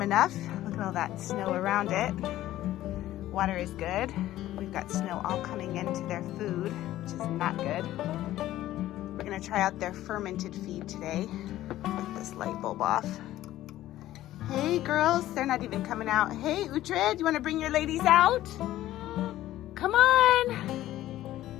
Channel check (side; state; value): right; quieter; 14.3 dB